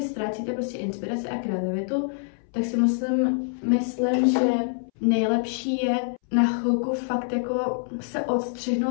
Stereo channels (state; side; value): silent; right; 61 dB below the other